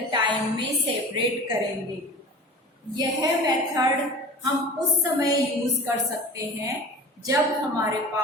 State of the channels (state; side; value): normal; both; correlation 0.37